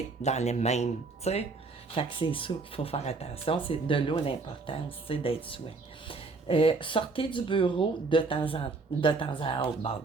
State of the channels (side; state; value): left; quieter; 3.9 dB